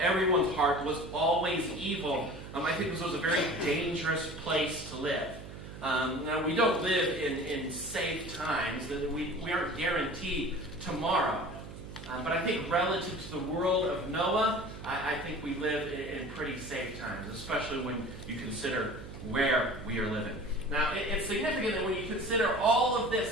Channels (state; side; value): noise; right; hum, 13 dB below the sound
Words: heart was always evil, I think this was a very dangerous place to live. Now, we don't live in safe times. We aren't guaranteed tomorrow. But I think relative to the world of Noah, I think we live in pretty safe times, especially when you consider where we are living. Now, it's significant that when you consider all of